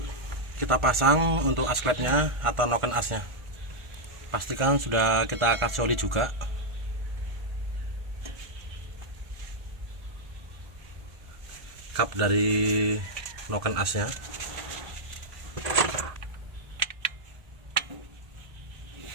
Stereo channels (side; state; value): left; late; 1.4 ms